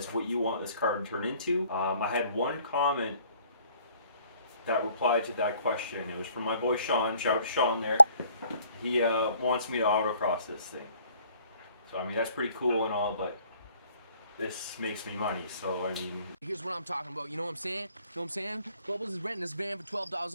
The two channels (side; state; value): both; inverted; correlation -0.59